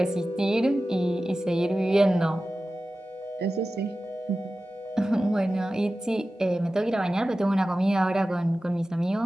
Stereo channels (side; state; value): both; normal; correlation 0.95